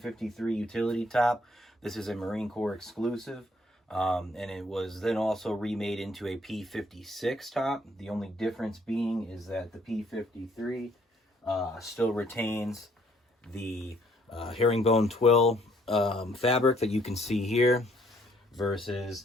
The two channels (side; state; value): both; normal; correlation 0.65